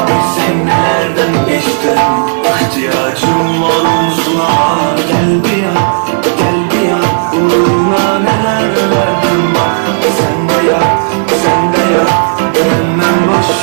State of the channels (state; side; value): silent; left; digital silence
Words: bilsen nelerden geçtim. İhtiyacım var omzuna, gel bir ya, gel bir ya. Uğruna neler verdim bak, sen de ya, sen de ya. Dönmem